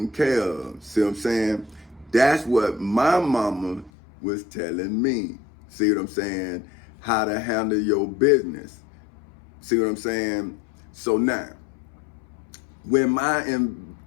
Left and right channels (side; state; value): right; drops out; at 3.9 s